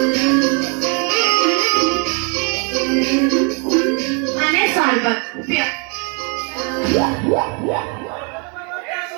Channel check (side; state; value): left; quieter; 36.5 dB